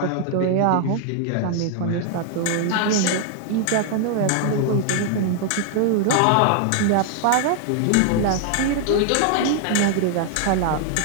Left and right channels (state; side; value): different; both; correlation 0.00